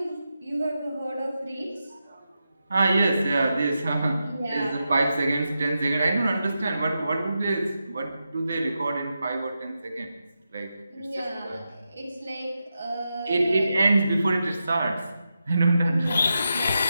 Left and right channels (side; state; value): both; inverted; correlation -0.88